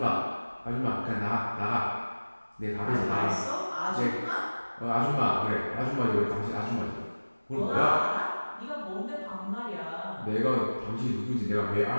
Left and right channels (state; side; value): inverted; both; correlation -1.00